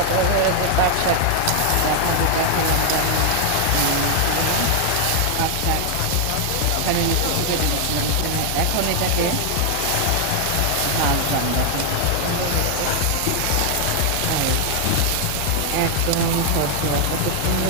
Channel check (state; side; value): different; both; correlation 0.00